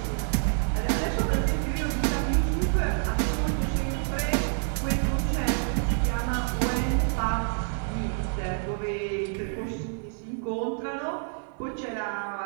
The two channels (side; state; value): left; silent; 55 dB below the other